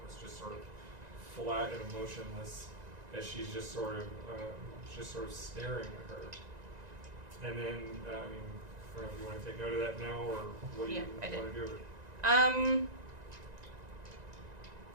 just sort of flat and emotionless, as she's just sort of staring at her. And then, I mean, I don't know if you want to take note of that now, or what do Yeah, you I did. want to do with it?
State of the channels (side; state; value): left; late; 1.9 ms